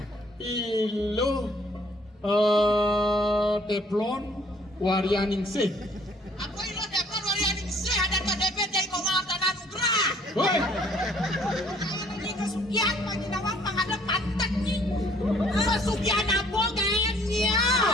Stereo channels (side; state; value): both; normal; correlation 0.61